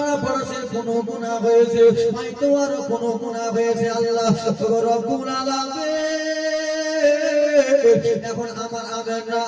পড়োশের কোনো গুনাহ হয়েছে, হয়তো আরো কোনো গুনাহ হয়েছে আল্লাহ রব্বুল আলামিন। এখন আমার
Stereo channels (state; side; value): identical; both; correlation 1.00